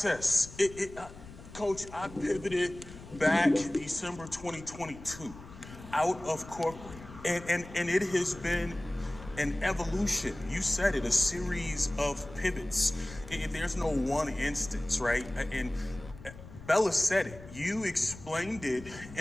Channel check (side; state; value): left; noise; rumble, 16 dB below the sound